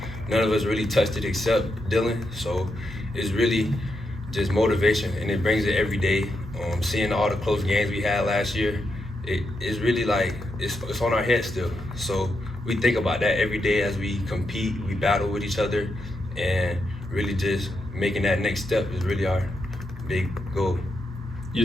none of us really touched it except Dylan. So it's really just motivation, and it brings it every day. Seeing all the close games we had last year, it's really like it's on our head still. So we think about that every day as we compete, we battle with each other, and really just making that next step is really our big goal.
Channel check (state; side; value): normal; both; correlation 0.84